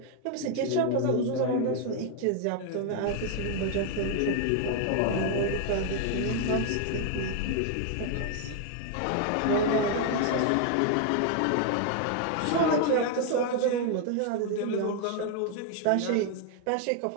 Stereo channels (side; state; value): both; different; correlation 0.00